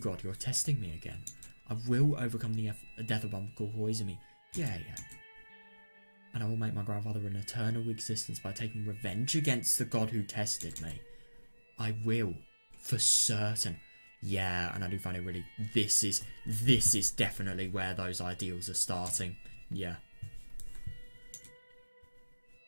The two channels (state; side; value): inverted; both; correlation -1.00